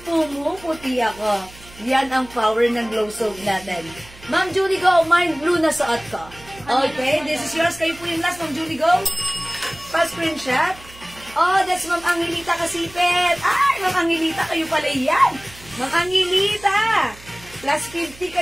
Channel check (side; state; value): right; noise; hum, 21 dB below the sound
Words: pumuputi ako. Yan ang power ng glow soap natin. Ma'am Julie Go, mind blue na suot ko. Okay, this is yours. Kayo po yung last, Ma'am Julie Go. Pa-screenshot. Oh, that's Ma'am Angelita Kasipet. Ay, Ma'am Angelita, kayo pala yan. Ma'am Angelita. Plus 50